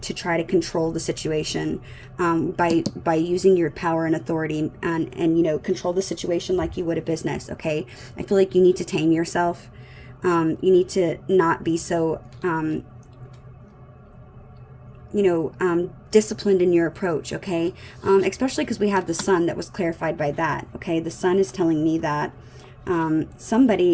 try to control the situation by using your power and authority, and you know, control the situation like you would a business, okay? I feel like you need to tame yourself. You need to not be so you know, disciplined in your approach, okay? Especially because we have the Sun that was clarified by that, okay? The Sun is telling me that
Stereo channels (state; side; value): identical; both; correlation 1.00